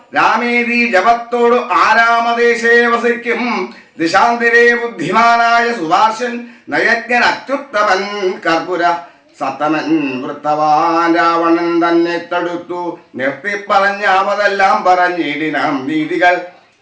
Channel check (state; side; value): identical; both; correlation 1.00